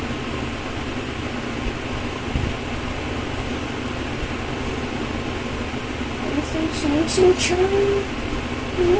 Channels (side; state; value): both; identical; correlation 1.00